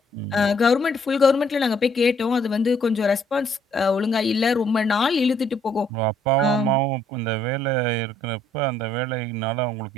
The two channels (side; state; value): both; normal; correlation 0.66